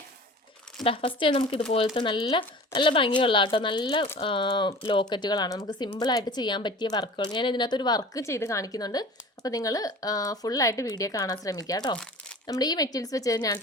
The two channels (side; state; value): both; normal; correlation 0.41